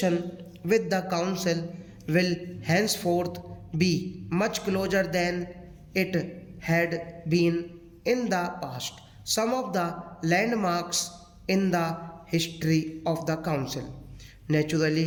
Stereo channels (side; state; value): both; identical; correlation 1.00